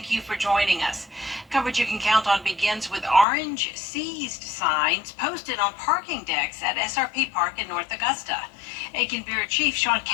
you for joining us. Coverage you can count on begins with orange seized signs posted on parking decks at SRP Park in North Augusta. Aiken Bureau Chief Sean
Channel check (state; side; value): drops out; right; at 3.2 s